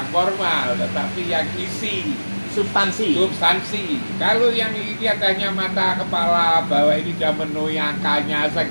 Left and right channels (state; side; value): inverted; both; correlation -1.00